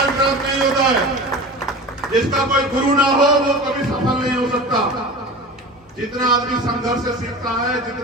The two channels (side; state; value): both; normal; correlation 0.34